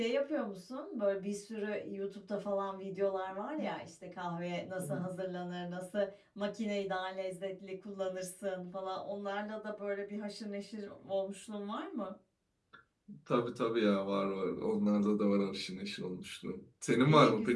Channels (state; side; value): identical; both; correlation 1.00